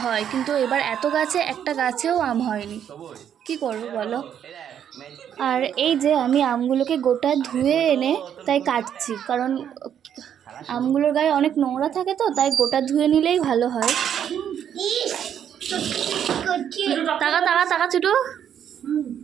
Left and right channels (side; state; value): left; quieter; 9.2 dB